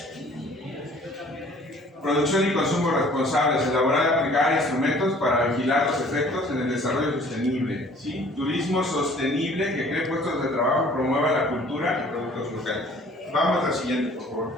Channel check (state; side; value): normal; both; correlation 0.53